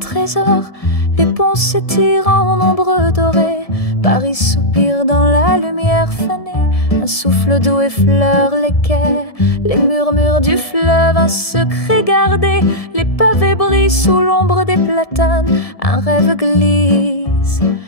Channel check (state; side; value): late; right; 1.7 ms